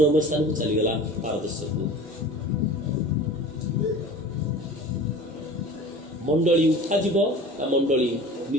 ସ୍ଥାନକୁ ଚାଲିଗଲା, ପାରଦର୍ଶକୁ। ମଣ୍ଡଳୀ ଉଠାଯିବ, ତା ମଣ୍ଡଳୀ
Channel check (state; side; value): normal; both; correlation 0.40